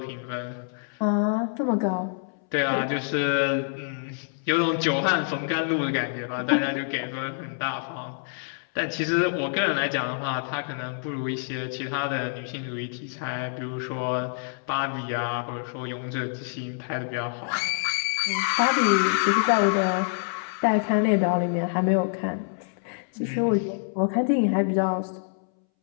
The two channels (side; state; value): right; silent; 61 dB below the other